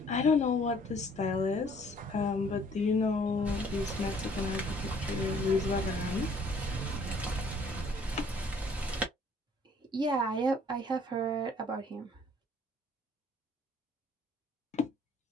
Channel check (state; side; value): normal; both; correlation 0.59